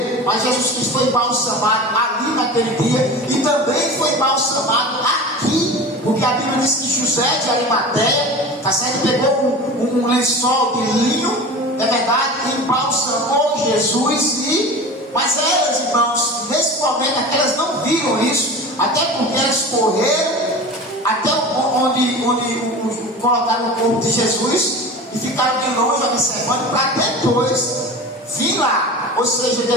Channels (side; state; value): both; normal; correlation 0.33